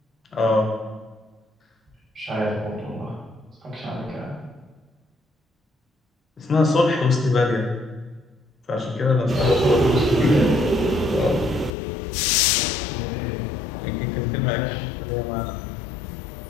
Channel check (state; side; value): drops out; right; at 11.7 s